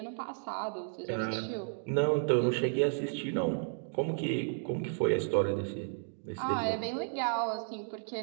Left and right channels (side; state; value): left; silent; digital silence